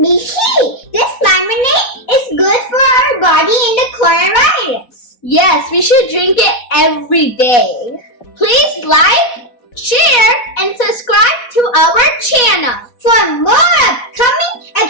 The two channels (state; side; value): late; right; 4.1 ms